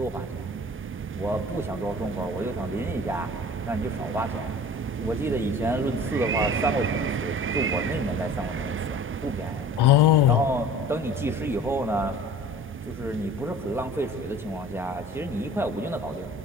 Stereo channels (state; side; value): normal; both; correlation 0.43